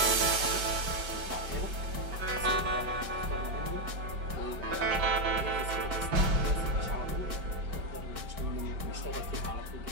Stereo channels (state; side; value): late; left; 5.1 ms